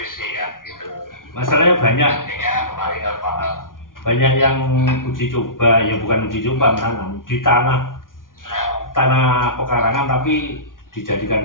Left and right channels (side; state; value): right; late; 0.90 ms